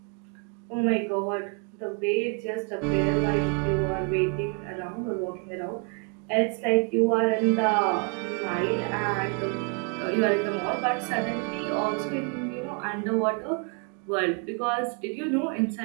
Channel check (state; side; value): quieter; left; 37.9 dB